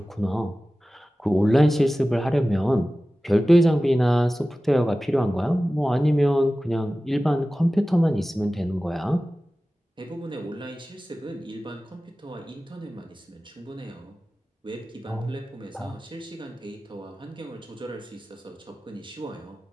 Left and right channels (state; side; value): normal; both; correlation 0.96